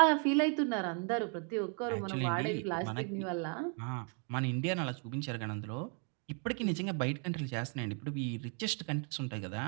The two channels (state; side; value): quieter; left; 38.7 dB